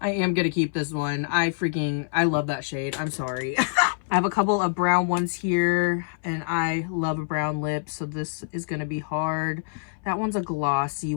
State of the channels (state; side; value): silent; right; 58 dB below the other